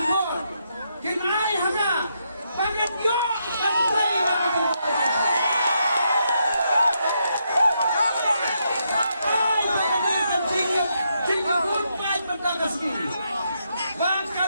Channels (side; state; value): both; inverted; correlation -0.79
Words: mo. Kinay haga. Bakit yun? Pantay na ako. Ay, pagkalitan sige. Sige goodbye magkakasli. Baka